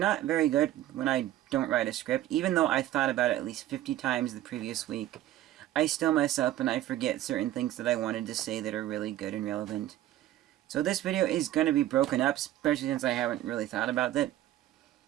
very good when I don't write a script. Even though I thought about it at least 50 times the previous week, I still mess up and I forget certain things that I wanted to say that are really good and relevant. So this video is going to be broken up, especially since I haven't really thought about it.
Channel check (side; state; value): left; quieter; 13.8 dB